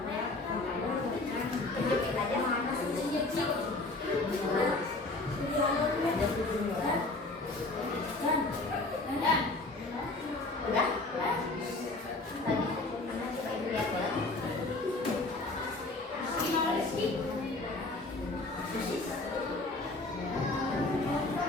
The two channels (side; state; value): right; quieter; 3.1 dB